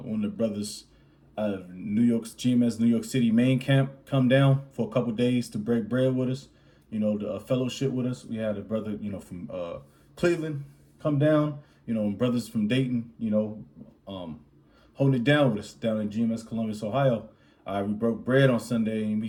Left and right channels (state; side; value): identical; both; correlation 1.00